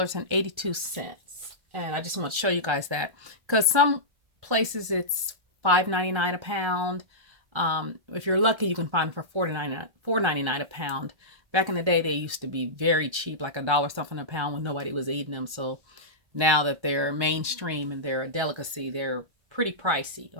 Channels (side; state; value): left; late; 1.2 ms